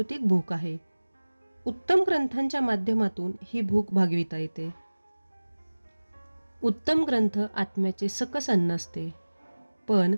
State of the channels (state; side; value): inverted; both; correlation -1.00